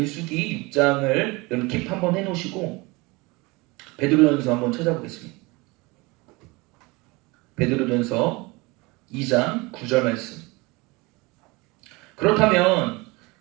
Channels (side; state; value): left; quieter; 24.7 dB